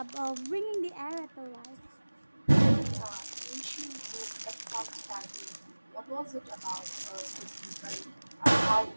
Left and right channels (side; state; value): both; inverted; correlation -1.00